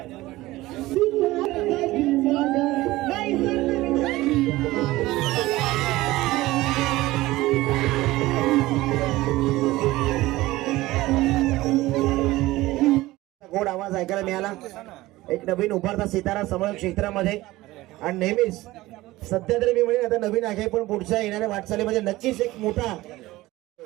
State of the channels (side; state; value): left; quieter; 18.2 dB